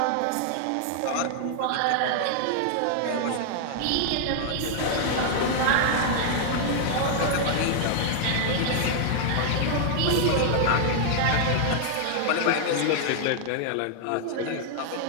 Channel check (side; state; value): both; different; correlation 0.00